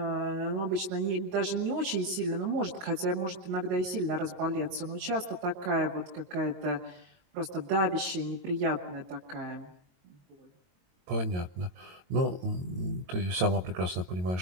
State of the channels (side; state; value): left; late; 22 ms